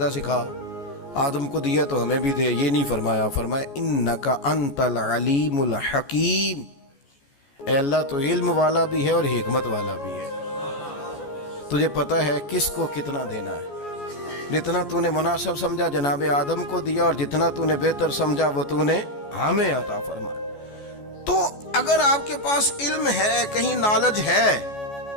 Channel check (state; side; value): late; right; 14 ms